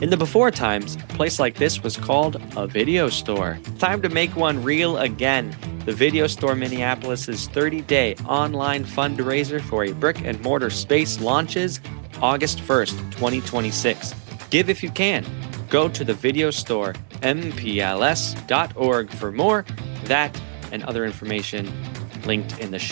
In the before times, a place like this was called a video store. Time to make one real again. The Video Store Minneapolis' 30-day online fundraiser for a brick-and-mortar space launches August 1st, 2026. Give if you can. Go to the video store, mpls.org for more. That and other information linked in the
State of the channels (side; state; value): left; silent; digital silence